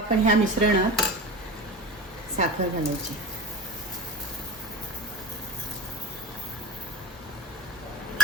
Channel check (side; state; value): both; normal; correlation 0.30